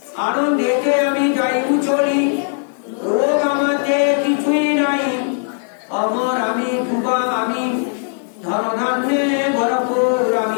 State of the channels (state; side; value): silent; right; digital silence